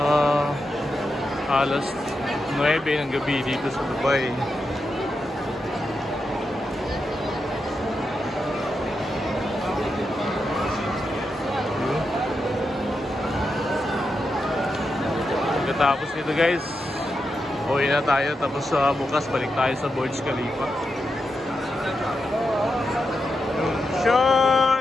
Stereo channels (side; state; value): both; normal; correlation 0.87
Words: Alas 9 ng gabi dito sa Dubai. Pagkatapos nito guys, uwi na tayo, tapos bukas balik tayo sa Burj Khalifa.